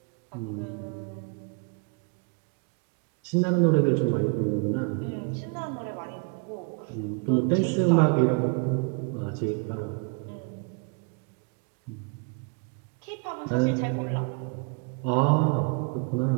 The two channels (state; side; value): quieter; left; 32.6 dB